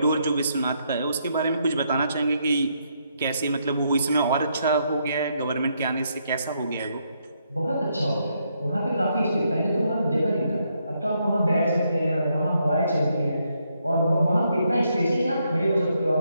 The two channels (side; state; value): both; inverted; correlation -0.76